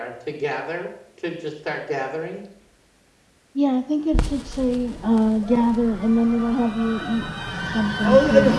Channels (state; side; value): identical; both; correlation 1.00